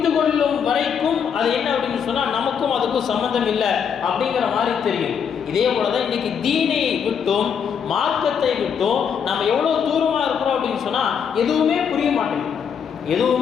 கொள்ளும் வரைக்கும் அது என்ன அப்படின்னு சொன்னால் நமக்கும் அதுக்கும் சம்மந்தம் இல்லை அப்படிங்கிற மாதிரி தெரியும். இதே போல தான் இன்னைக்கு தீனை விட்டும் மார்க்கத்தை விட்டும் நம்ம எவ்வளோ தூரமாக இருக்கிறோம் அப்படின்னு சொன்னால் எதுவுமே புரிய மாட்டேங்குது.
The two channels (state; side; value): quieter; right; 7.3 dB